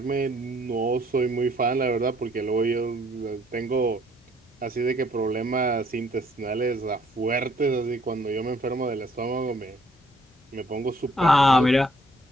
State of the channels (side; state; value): both; normal; correlation 0.63